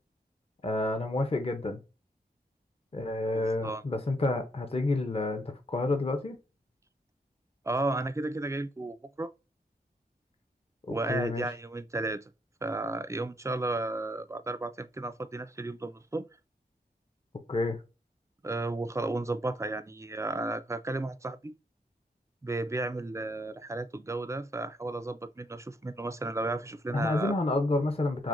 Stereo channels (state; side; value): normal; both; correlation 0.73